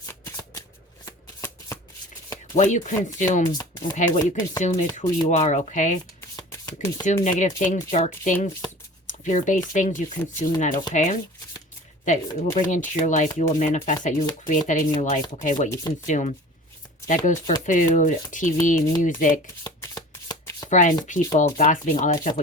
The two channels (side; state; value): both; normal; correlation 0.41